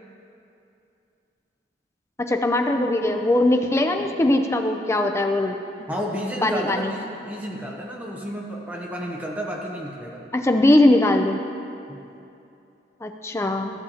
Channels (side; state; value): both; normal; correlation 0.78